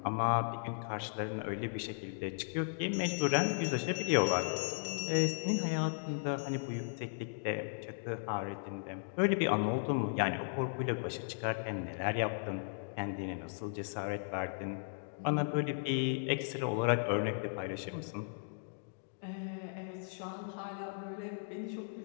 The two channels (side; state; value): right; silent; digital silence